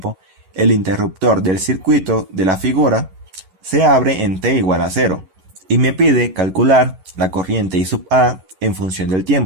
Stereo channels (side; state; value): left; late; 11 ms